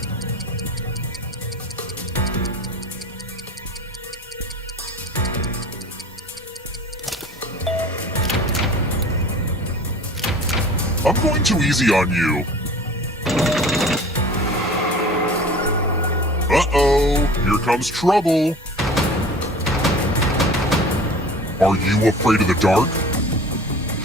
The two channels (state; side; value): normal; both; correlation 0.42